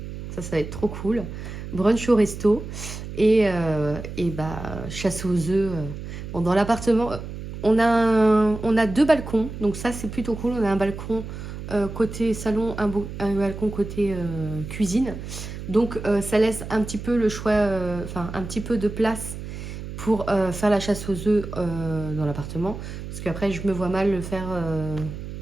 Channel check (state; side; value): noise; right; hum, 9 dB below the sound